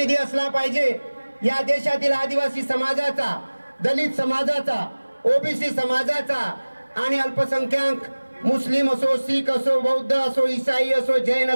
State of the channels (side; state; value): both; inverted; correlation -1.00